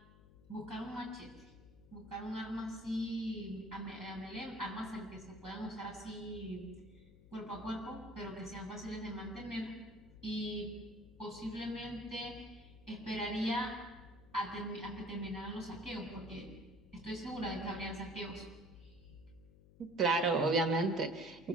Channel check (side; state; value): left; noise; hum, 21 dB below the sound